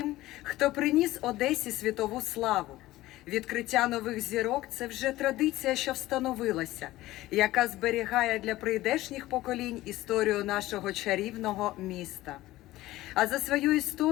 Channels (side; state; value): right; quieter; 16.8 dB